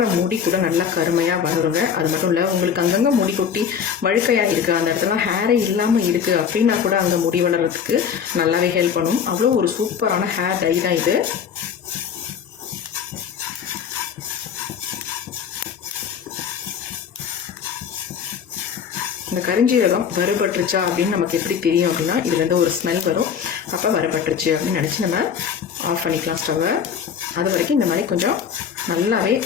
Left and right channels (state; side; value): quieter; right; 7.4 dB